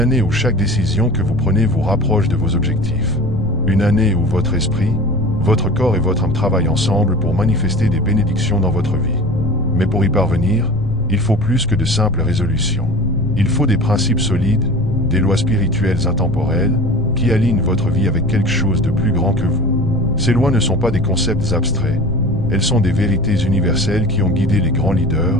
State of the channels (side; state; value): left; noise; rumble, 7 dB below the sound